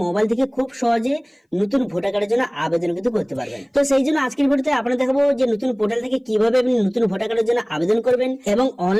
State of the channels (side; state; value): both; identical; correlation 1.00